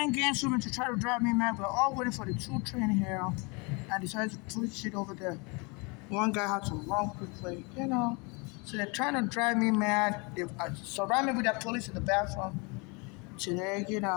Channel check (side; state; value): right; quieter; 30.1 dB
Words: games with me to try to drive me mad. We're all waiting for the 2 train here, and decided to push it over there. One guy had to run quickly. So they're trying to drive me mad. They surround me with the police in the bathroom today.